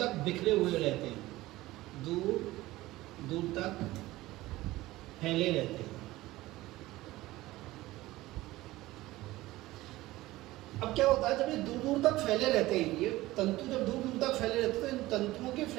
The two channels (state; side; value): quieter; left; 17.8 dB